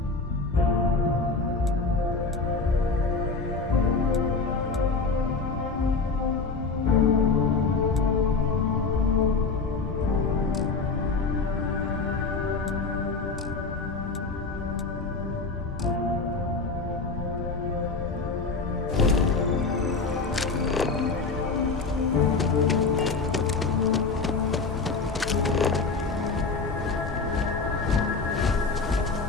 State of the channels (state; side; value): quieter; right; 4.3 dB